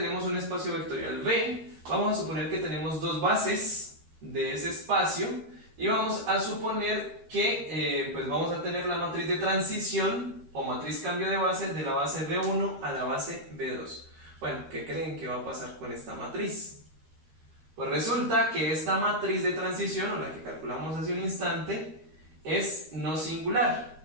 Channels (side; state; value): left; late; 13 ms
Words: un espacio vectorial V, vamos a suponer que tenemos dos bases de ese espacio y vamos a suponer que pues vamos a tener la matriz de transición o matriz cambio de base de la base B1 a la base B2. Bueno, ¿qué creen que va a pasar con esta matriz? Pues resulta que esta matriz de transición, o la que calculamos hace un instante, es no singular,